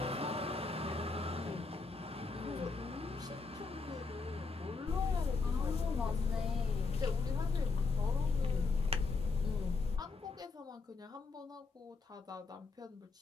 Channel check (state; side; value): quieter; right; 4.2 dB